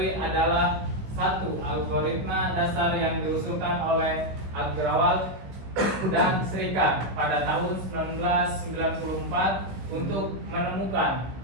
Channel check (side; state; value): left; late; 16 ms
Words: adalah satu algoritma dasar yang diusulkan oleh Agrawal dan Srikant pada tahun 1994 untuk menemukan